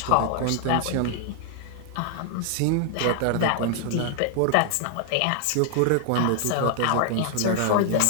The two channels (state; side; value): different; both; correlation 0.00